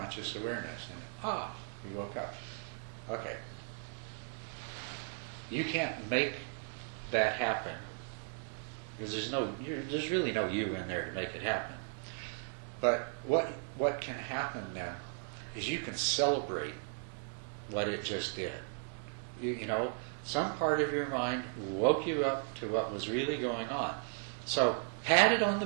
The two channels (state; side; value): silent; left; 54 dB below the other